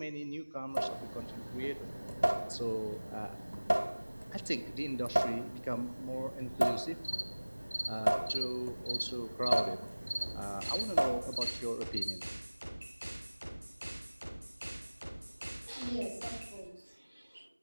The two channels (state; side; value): inverted; both; correlation -1.00